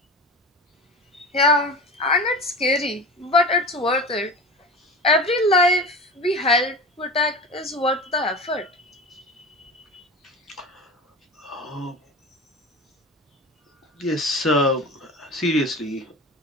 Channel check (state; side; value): normal; both; correlation 0.31